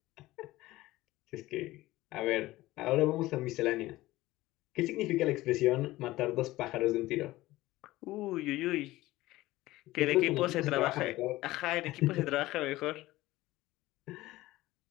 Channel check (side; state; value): right; quieter; 17.7 dB